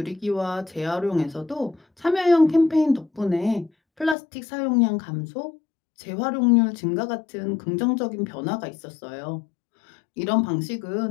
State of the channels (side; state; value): right; drops out; at 4.2 s